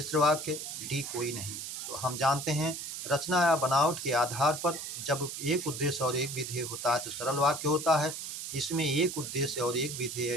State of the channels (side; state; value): right; noise; hiss, 7 dB below the sound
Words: वाक्य, डी कोई नहीं। तो हम जानते हैं रचना या बनावट के आधार पर जब एक उद्देश्य और एक विधेय होता है तो सरल वाक्य होता है। इसमें एक उद्देश्य और एक विधेय